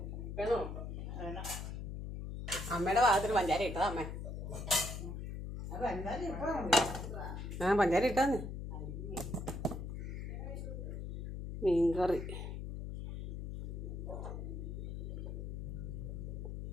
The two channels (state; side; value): noise; left; hum, 6 dB below the sound